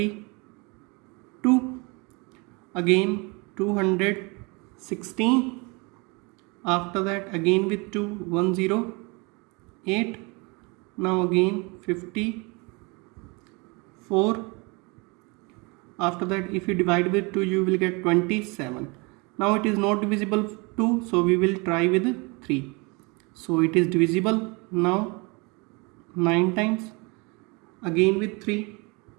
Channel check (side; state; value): left; quieter; 28.8 dB